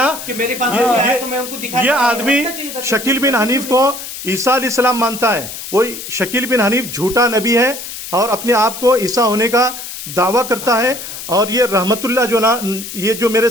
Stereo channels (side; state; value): left; noise; hiss, 10 dB below the sound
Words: कि मेरे पास आया तो मैं उनको दिखा, ये आदमी शकील बिन हनीफ को ईसा अलैहिस्सलाम मानता है। वो शकील बिन हनीफ झूठा नबी है और अपने आप को ईसा होने का दावा करता है। और ये रहमतुल्लाह जो ना, ये जो मेरे